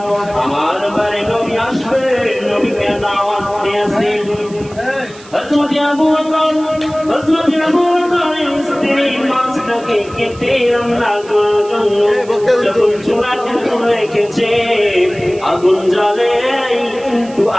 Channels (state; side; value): noise; right; hiss, 22 dB below the sound